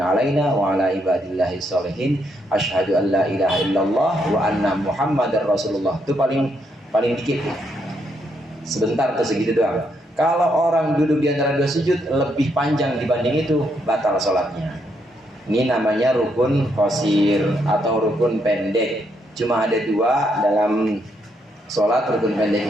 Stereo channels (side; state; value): both; normal; correlation 0.76